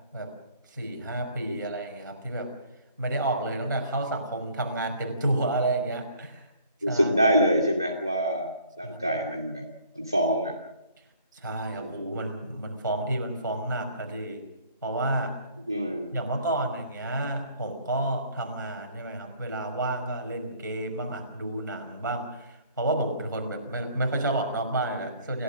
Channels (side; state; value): both; inverted; correlation -0.56